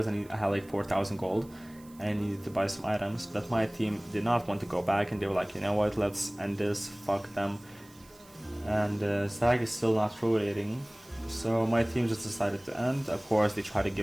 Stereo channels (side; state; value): right; noise; hiss, 25 dB below the sound